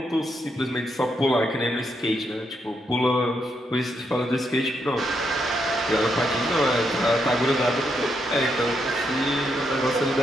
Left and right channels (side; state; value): both; normal; correlation 0.79